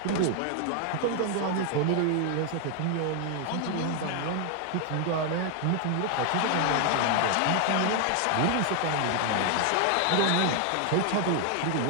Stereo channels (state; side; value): different; both; correlation 0.00